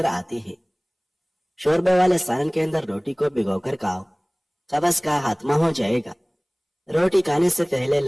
آتی ہے۔ شوربے والے سالن کے اندر روٹی کو بھگو کر کھاؤ، قبض کا خاتمہ ہو جائے گا۔ روٹی کھانے سے پہلے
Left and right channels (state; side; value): identical; both; correlation 1.00